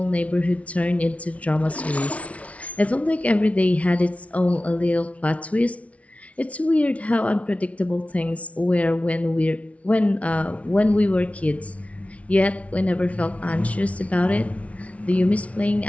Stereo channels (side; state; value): right; late; 0.065 ms